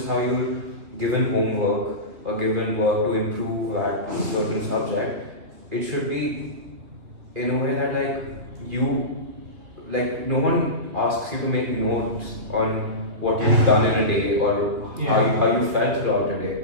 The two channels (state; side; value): late; left; 3.0 ms